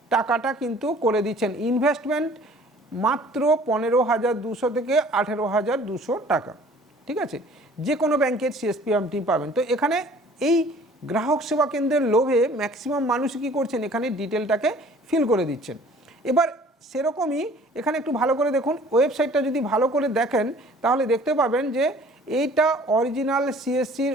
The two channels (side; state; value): both; normal; correlation 0.51